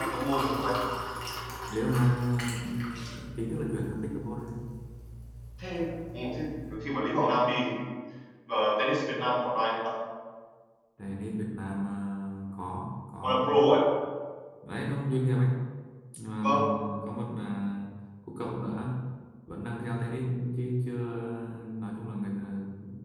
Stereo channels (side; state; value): both; identical; correlation 1.00